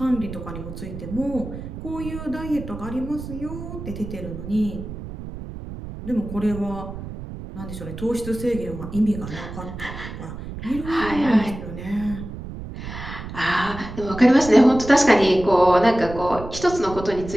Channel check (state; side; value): noise; right; rumble, 10 dB below the sound